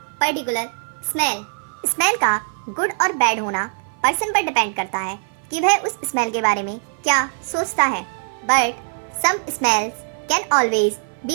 particular smell. Smell का गुड और बैड होना पर्सन पर डिपेंड करता है कि वह उस स्मेल के बारे में क्या सोचता है। But some smells can always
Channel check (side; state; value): left; silent; 55 dB below the other